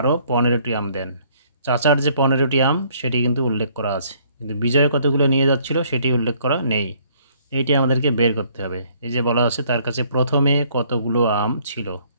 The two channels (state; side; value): inverted; both; correlation -0.62